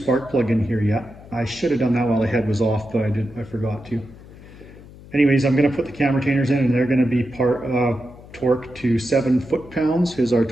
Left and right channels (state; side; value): noise; left; hum, 19 dB below the sound